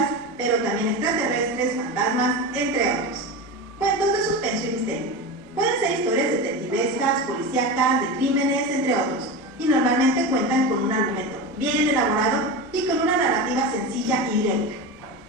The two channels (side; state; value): both; normal; correlation 0.23